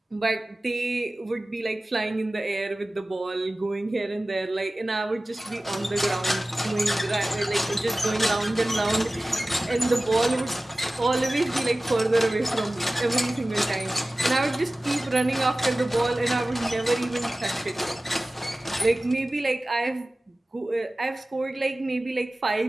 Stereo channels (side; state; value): both; normal; correlation 0.97